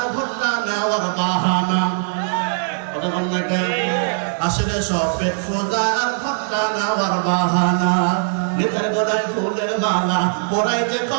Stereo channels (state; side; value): silent; left; 66 dB below the other